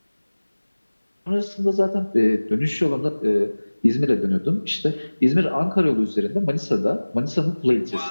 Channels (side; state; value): both; inverted; correlation -1.00